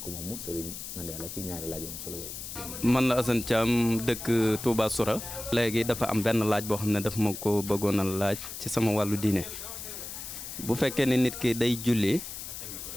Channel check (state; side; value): noise; left; hiss, 9 dB below the sound